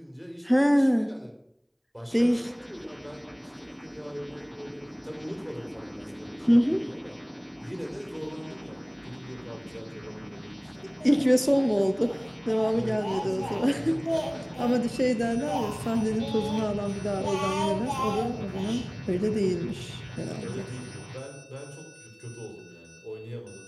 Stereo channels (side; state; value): both; identical; correlation 1.00